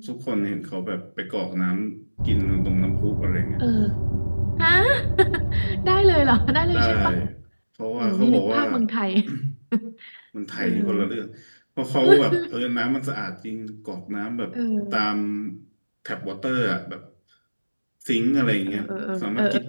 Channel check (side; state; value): both; inverted; correlation -1.00